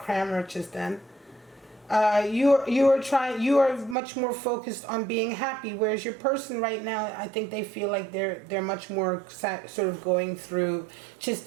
just then. You are much more focused on being happy, whereas your person right now, I think they feel like they're much more sort of going through just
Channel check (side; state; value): left; drops out; at 4.0 s